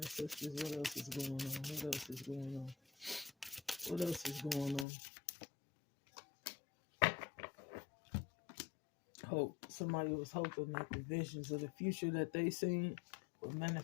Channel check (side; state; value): right; drops out; at 4.9 s